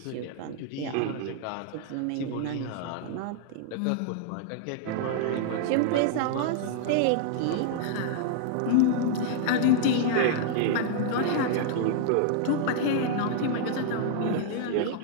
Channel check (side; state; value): both; different; correlation -0.01